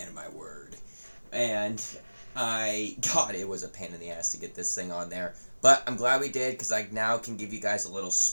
of my word. And God, it was a pain in the ass to get this thing on there. But I'm glad we did, because I now can give you guys a little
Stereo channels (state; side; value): inverted; both; correlation -1.00